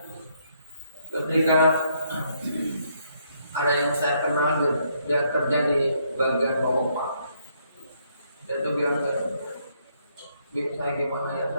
ketika ada yang saya kenal, dia kerja di bagian pompa. Dia tuh bilang ke saya, gimana ya,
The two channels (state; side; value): inverted; both; correlation -0.72